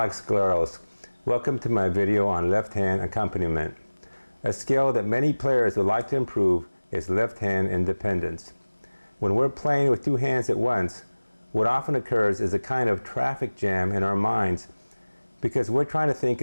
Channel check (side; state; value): both; inverted; correlation -1.00